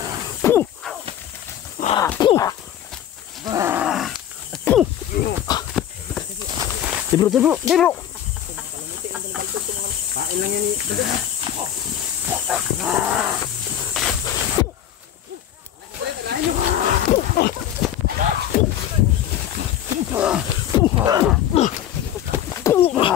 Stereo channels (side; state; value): right; quieter; 10.7 dB